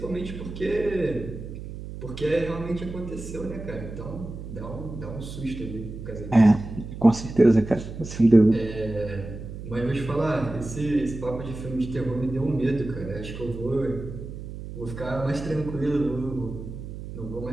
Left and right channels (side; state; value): right; noise; hum, 10 dB below the sound